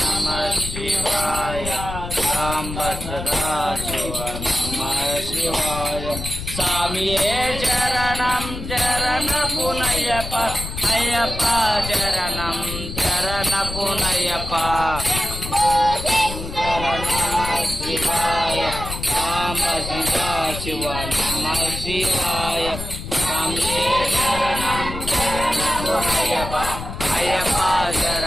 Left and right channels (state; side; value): noise; left; rumble, 8 dB below the sound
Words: శివాయ సాంబ సదా శివ నమ శివాయ స్వామియే చరణం చరణ పునయప అయ్యప్ప చరణం చరణ పునయప శంకర నమ శివాయ సాంబ సదా శివ నమ శివాయ స్వామియే చరణం చరణ పునయప అయ్యప్ప